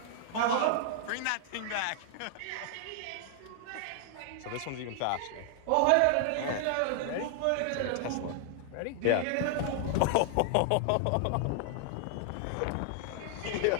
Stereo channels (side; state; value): both; different; correlation 0.00